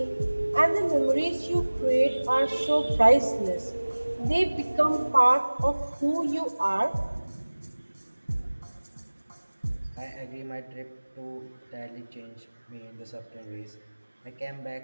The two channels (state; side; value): inverted; both; correlation -1.00